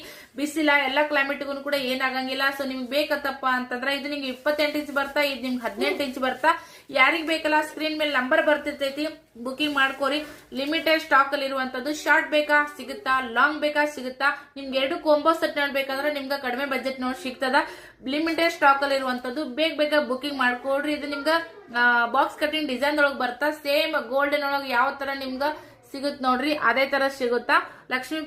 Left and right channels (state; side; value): identical; both; correlation 1.00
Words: ಬಿಸಿಲ ಎಲ್ಲಾ ಕ್ಲೈಮೇಟ್ಗೂ ಕೂಡ ಏನಾಗಂಗಿಲ್ಲ. ಸೊ ನಿಮ್ಗೆ ಬೇಕತ್ತಪ್ಪ ಅಂತಂದ್ರೆ ಇದು ನಿಮ್ಗೆ 28 ಇಂಚ್ ಬರ್ತಾ, ಇದು ನಿಮ್ಗೆ 18 ಇಂಚ್ ಬರ್ತಾ. ಯಾರಿಗ್ ಬೇಕಲ್ಲ ಸ್ಕ್ರೀನ್ ಮೇಲೆ ನಂಬರ್ ಬರ್ತಿರ್ತೈತಿ, ಬುಕಿಂಗ್ ಮಾಡ್ಕೋರಿ. ಲಿಮಿಟೆಡ್ ಸ್ಟಾಕ್ ಅಲ್ಲಿ ಇರುವಂತದ್ದು. ಶಾರ್ಟ್ ಬೇಕಾ ಸಿಗುತ್ತಾ, ಲಾಂಗ್ ಬೇಕಾ ಸಿಗುತ್ತಾ. ನಿಮ್ಗೆ 2 ಕಾಂಬೋ ಸೆಟ್ ನೋಡ್ಬೇಕಂದ್ರೆ ನಿಮ್ಗೆ ಕಡಿಮೆ ಬಜೆಟ್ ನೋಡಿ ಸಿಗ್ತದ. ಲಿಮಿಟೆಡ್ ಸ್ಟಾಕ್ ಅಲ್ಲಿ ಇರುವಂತದ್ದು. ಬೇಗ ಬುಕಿಂಗ್ ಮಾಡ್ಕೊಡ್ರಿ. ಇದು ನಿಮ್ಗ ಬಾಕ್ಸ್ ಕಟಿಂಗ್ ಡಿಸೈನ್ ಒಳಗ್ ಬರ್ತಾ. ಸೇಮ್ ಗೋಲ್ಡನ್ ಒಳಗ್ ಯಾವ ತರ ನಿಮ್ಗ ಸಿಗುತ್ ನೋಡ್ರಿ ಅದೇ ತರ ಸಿಗುತ್ತಾ. ಲಕ್ಷ್ಮಿ